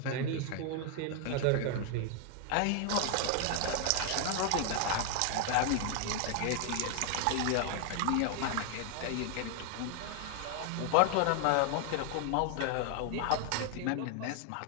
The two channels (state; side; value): different; both; correlation 0.00